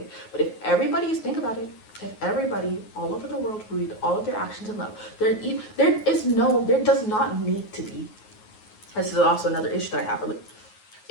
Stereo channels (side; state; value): right; late; 9.4 ms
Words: But if everybody think about it, if everybody all over the world rooted all of their actions in love, there does not need to be. This is also another issue that I have.